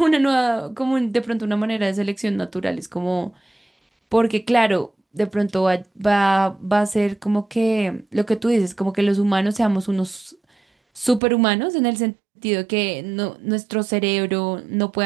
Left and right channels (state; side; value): drops out; left; at 11.2 s